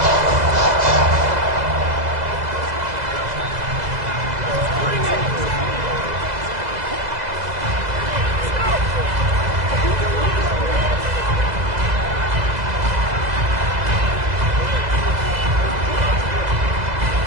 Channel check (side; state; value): left; late; 2.0 ms